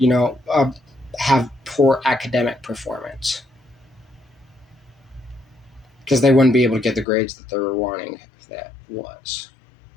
have poor academic performance, because they wouldn't be able to get the grades that they were wanting if that was.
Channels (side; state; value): right; drops out; at 7.1 s